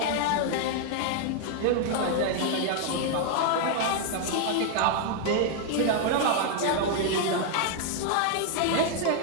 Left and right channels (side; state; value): both; different; correlation 0.00